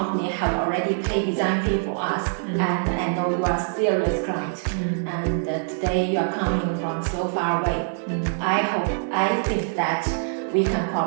have already paid design fee for us, and I know you are a serious client. And today you are coming from so far away. I think that we can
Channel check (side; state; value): left; silent; 62 dB below the other